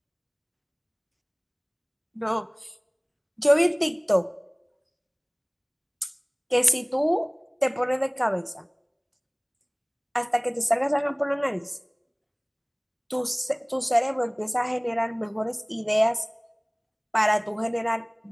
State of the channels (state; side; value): identical; both; correlation 1.00